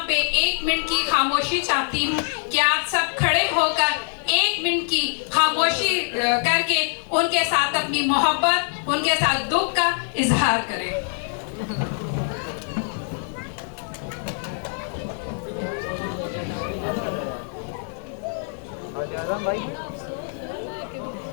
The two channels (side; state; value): right; silent; 59 dB below the other